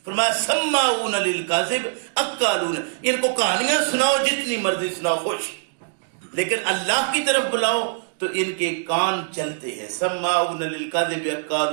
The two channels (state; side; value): silent; left; digital silence